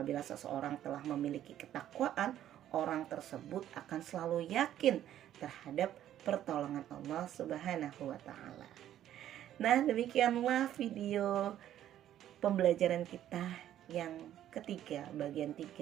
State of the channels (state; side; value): quieter; left; 11.7 dB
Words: seseorang telah memiliki ketakwaan, orang tersebut akan selalu yakin terhadap pertolongan Allah Subhanahu wa taala. Nah, demikianlah video pembelajaran kita yang ketiga, bagian